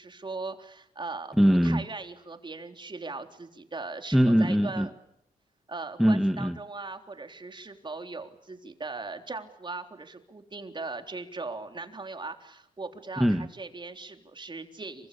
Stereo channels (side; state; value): both; normal; correlation 0.92